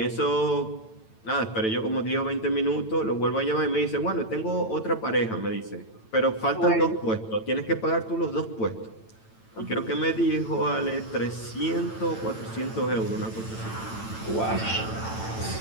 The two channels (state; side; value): late; right; 9.0 ms